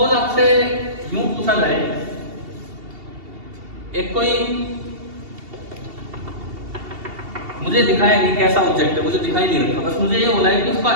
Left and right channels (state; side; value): late; left; 2.7 ms